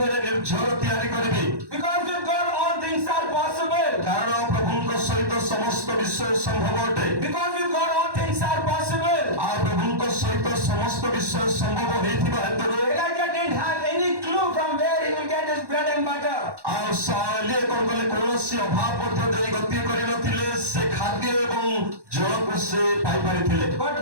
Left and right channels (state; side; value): late; left; 1.1 ms